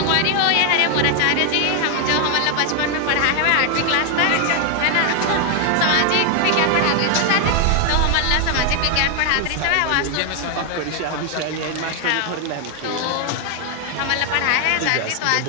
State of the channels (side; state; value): both; different; correlation 0.00